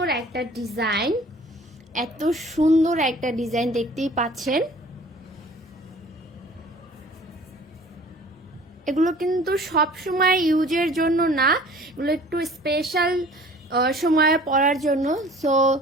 একটা ডিজাইন, এত সুন্দর একটা ডিজাইন দেখতেই পাচ্ছেন। এগুলো কিন্তু সব সময় ইউজের জন্য না, এগুলো একটু স্পেশাল সময়ে পরার জন্য। সো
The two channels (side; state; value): both; normal; correlation 0.49